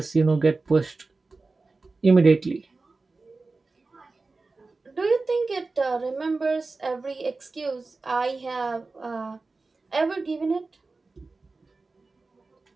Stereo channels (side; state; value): left; quieter; 3.7 dB